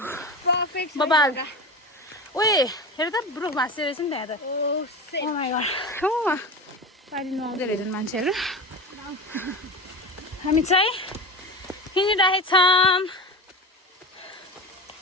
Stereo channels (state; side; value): normal; both; correlation 0.28